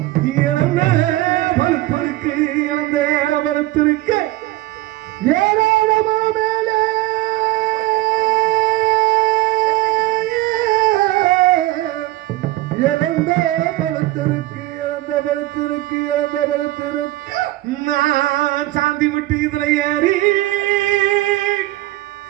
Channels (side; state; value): left; quieter; 17.5 dB